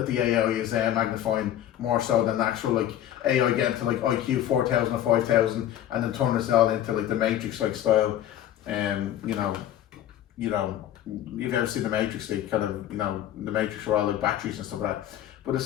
the AI is magnifying more so than actual AI getting to IQ 4,000 or 5,000 and then turn us all into the Matrix style. You've ever seen the Matrix? The Matrix were all batteries and stuff like that. But it's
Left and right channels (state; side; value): quieter; right; 11.7 dB